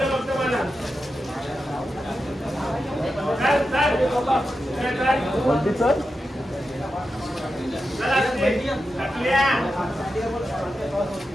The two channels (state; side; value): normal; both; correlation 0.90